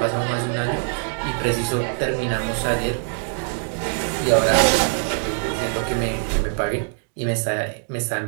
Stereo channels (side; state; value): left; silent; 64 dB below the other